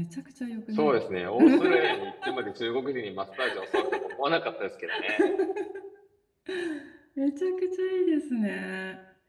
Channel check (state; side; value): identical; both; correlation 1.00